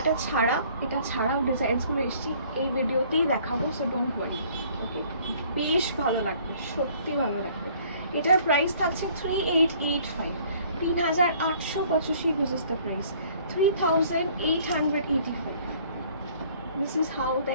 এটা ছাড়াও ডিজাইনসগুলো এসেছি, এই ভিডিওতেই দেখাবো। সো ডোন্ট ওয়ারি, ওকে? বেশ ভালো লাগবে, সত্যি ভালো লাগবে। এটার প্রাইস থাকছে 3885, 3885 বুঝেছ the price 3885। This is how the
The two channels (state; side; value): inverted; both; correlation -0.57